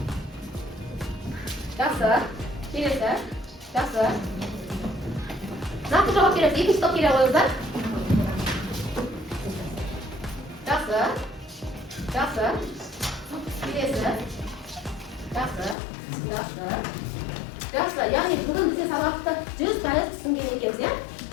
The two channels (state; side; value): drops out; right; at 15.8 s